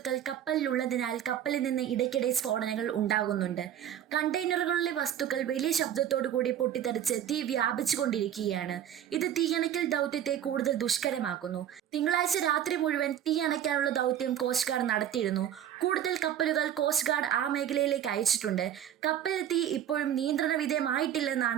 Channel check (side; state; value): left; quieter; 10.3 dB